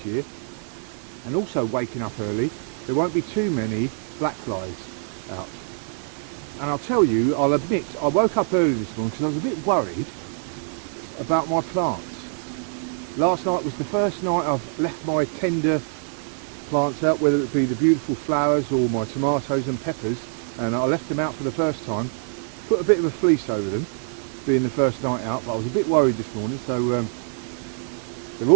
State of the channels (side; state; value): left; silent; digital silence